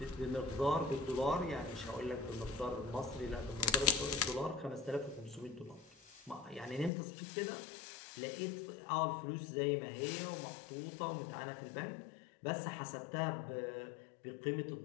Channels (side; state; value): right; drops out; at 6.9 s